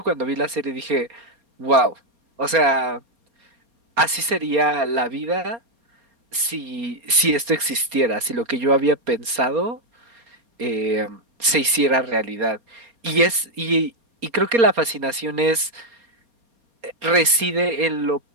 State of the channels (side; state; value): left; late; 4.3 ms